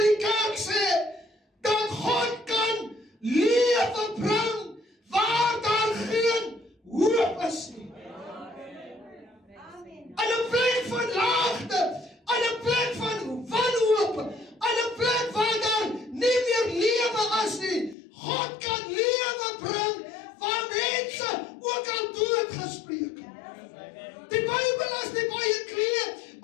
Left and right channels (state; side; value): drops out; right; at 17.9 s